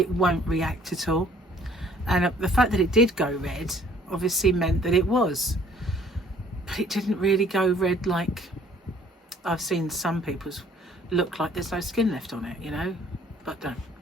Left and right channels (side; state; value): both; normal; correlation 0.57